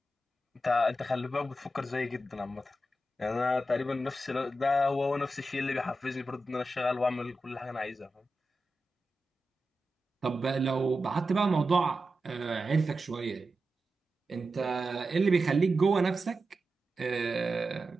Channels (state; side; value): normal; both; correlation 0.91